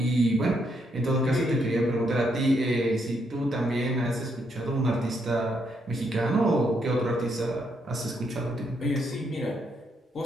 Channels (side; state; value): both; normal; correlation 0.76